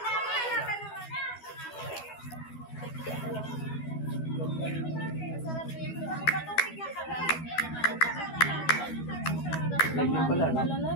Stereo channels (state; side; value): late; right; 12 ms